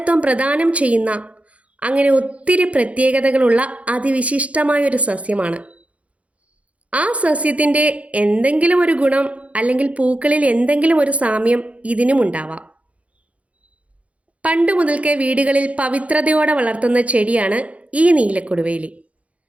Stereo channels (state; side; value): late; left; 0.065 ms